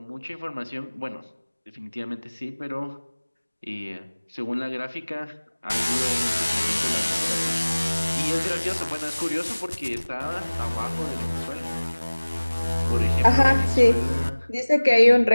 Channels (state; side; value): inverted; both; correlation -1.00